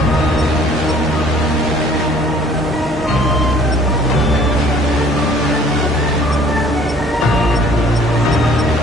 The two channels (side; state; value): right; noise; hum, 14 dB below the sound